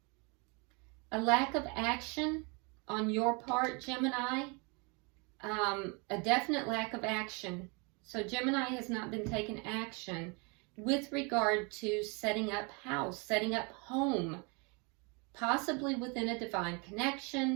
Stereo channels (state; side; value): quieter; left; 31.4 dB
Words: A lack of action on your part, Gemini. A definite lack of action. So Gemini has not been taking action with regard to setting up house, setting up home, possibly within a divine